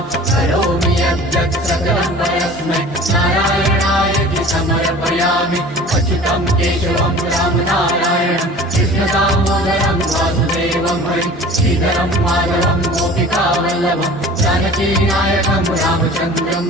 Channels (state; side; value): normal; both; correlation 0.43